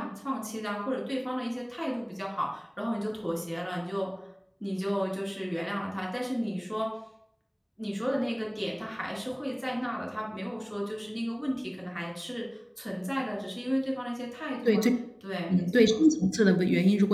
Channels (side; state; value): both; identical; correlation 1.00